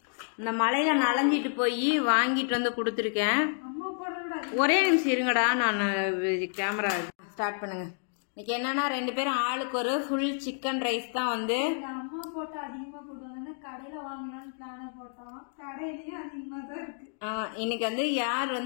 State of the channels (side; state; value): right; silent; digital silence